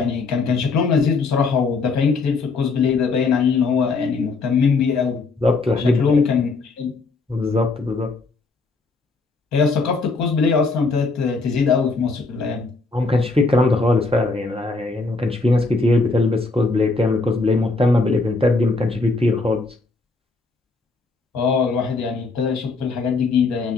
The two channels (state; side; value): quieter; right; 3.9 dB